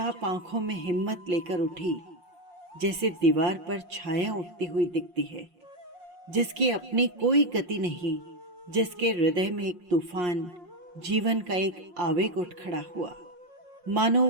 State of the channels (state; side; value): late; left; 5.6 ms